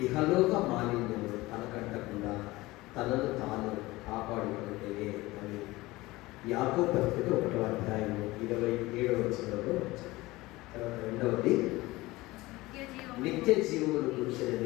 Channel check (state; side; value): quieter; right; 19.9 dB